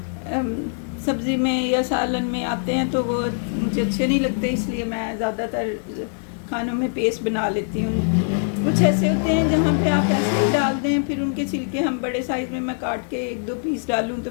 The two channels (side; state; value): right; silent; digital silence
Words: सब्ज़ी में या सालन में आते हैं तो वो मुझे अच्छे नहीं लगते, इसलिए मैं ज़्यादातर खानों में पेस्ट बना लेती हूँ। कुछ ऐसे होते हैं जहाँ पे आप ऐसे ही डाल दें, फिर उनके छिलके हम बड़े साइज़ में मैं काट के 1-2 पीस डालूँ तो